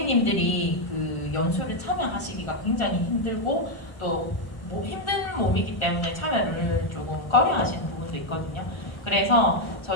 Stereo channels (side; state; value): right; late; 1.3 ms